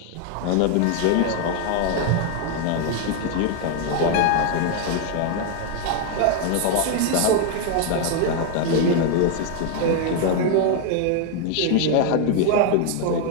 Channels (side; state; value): both; different; correlation 0.01